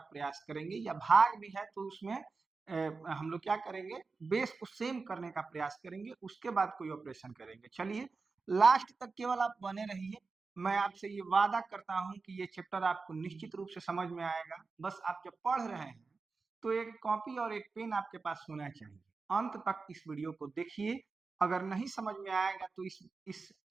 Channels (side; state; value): left; quieter; 4.3 dB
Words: करेंगे, या भाग भी है तो उसमें हम लोग क्या करेंगे, बेस को सेम करने का प्रयास करेंगे, उसके बाद कोई ऑपरेशन करेंगे। चलिए लास्ट तक केवल आप बने रहिए। मैं आपसे ये वादा करता हूं कि ये चैप्टर आपको निश्चित रूप से समझ में आएगा। बस आप जब पढ़ रहे हैं तो एक कॉपी और एक पेन आपके पास होना चाहिए। अंत तक इस वीडियो को देखिए। अगर नहीं समझ में आएगा तो इस